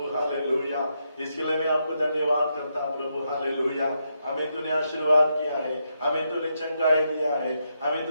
हालेलुया इसके लिए मैं आपको धन्यवाद करता प्रभु हालेलुया हमें तूने आशीर्वाद किया है हमें तूने चंगाई दिया है हमें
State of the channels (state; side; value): inverted; both; correlation -0.82